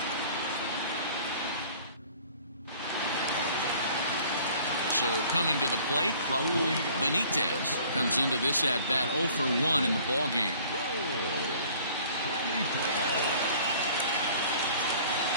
So coming to the plate, Raul Benitez comes into this at bat 0 for 1 in the ball game.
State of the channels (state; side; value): inverted; both; correlation -0.52